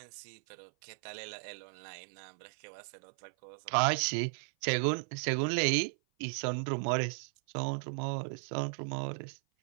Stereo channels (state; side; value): silent; left; 54 dB below the other